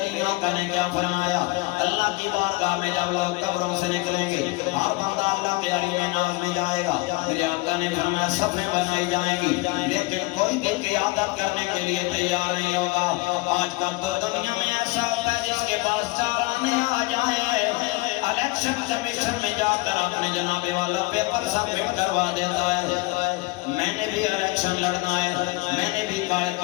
آقا نے کیا فرمایا اللہ کی بارگاہ میں جب لوگ قبروں سے نکلیں گے ہر بندہ اللہ کے علی ناز میں جائے گا میرے آقا نے فرمایا صفیں بنائی جائیں گی لیکن کوئی بھی قیادت کرنے کے لیے تیار نہیں ہوگا آج کل تو دنیا میں ایسا ہوتا ہے جس کے پاس چار آنے آ جائیں الیکشن کمیشن میں جا کر اپنے جناب والا پیپر سبمٹ کروا دیتا ہے میں نے بھی الیکشن لڑنا ہے میں نے بھی قائد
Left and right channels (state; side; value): quieter; right; 23.5 dB